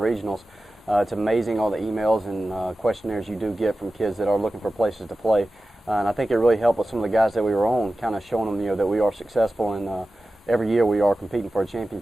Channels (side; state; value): both; normal; correlation 0.94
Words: it's amazing all the emails and questionnaires you do get from kids that are looking for places to play. And I think it really helped with some of the guys that we were on, kind of showing them, that we are successful and every year we are competing for a